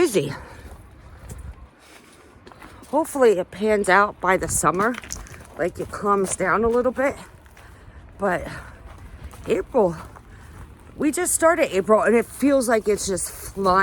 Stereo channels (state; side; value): identical; both; correlation 1.00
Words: Hopefully it pans out by the summer, like it calms down a little bit. But April, we just started April and it feels like it's just